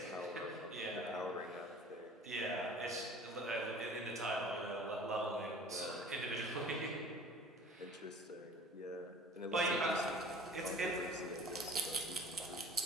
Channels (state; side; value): normal; both; correlation 0.46